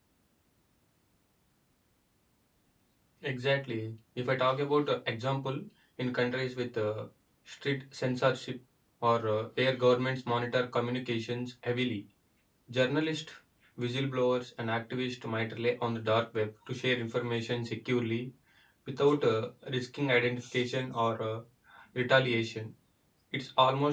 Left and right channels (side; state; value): both; identical; correlation 1.00